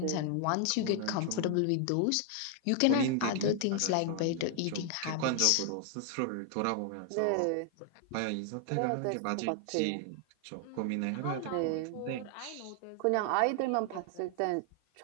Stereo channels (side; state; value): both; different; correlation 0.00